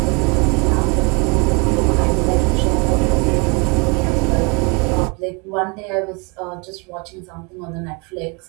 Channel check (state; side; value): quieter; left; 31.5 dB